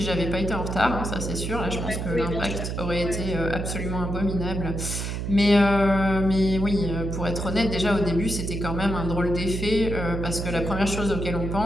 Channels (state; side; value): noise; right; hum, 3 dB below the sound